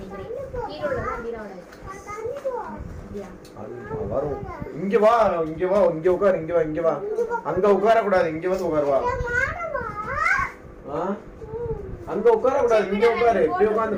கீழ உள்ளதா மீராவோட. வரும். இங்க வா. உட்கார். அங்க உட்கார கூடாது. இங்க வந்து உட்கார் வா. அங்க உட்கார கூடாது. இங்க உட்காரு. இப்படி உட்கார்ந்து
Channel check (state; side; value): identical; both; correlation 1.00